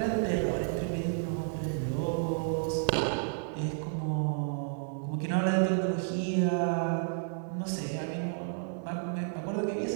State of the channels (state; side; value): silent; left; 56 dB below the other